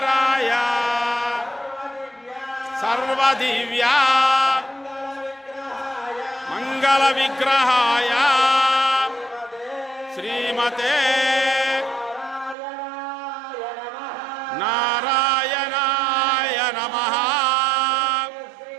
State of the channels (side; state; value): left; drops out; at 12.6 s